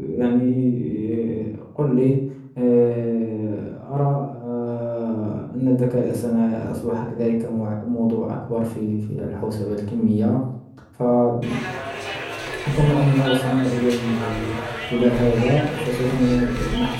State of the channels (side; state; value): both; identical; correlation 1.00